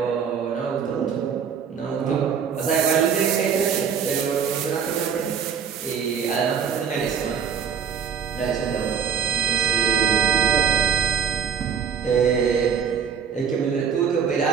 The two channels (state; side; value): quieter; left; 7.3 dB